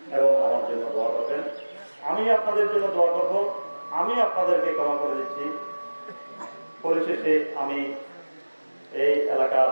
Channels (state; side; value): inverted; both; correlation -1.00